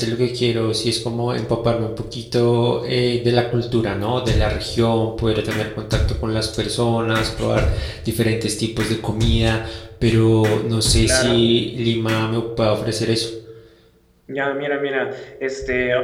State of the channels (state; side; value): identical; both; correlation 1.00